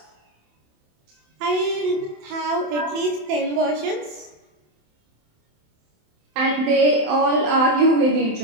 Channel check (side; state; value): left; late; 27 ms